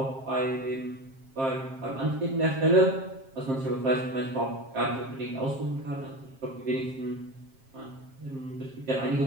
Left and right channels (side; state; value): left; late; 7.5 ms